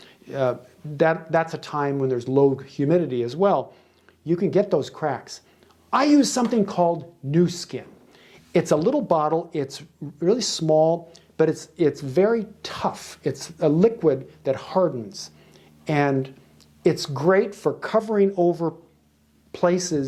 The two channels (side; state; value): both; identical; correlation 1.00